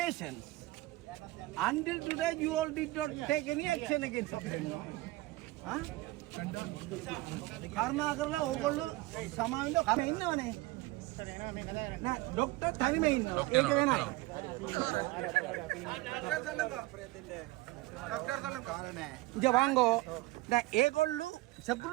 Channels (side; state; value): left; quieter; 19.7 dB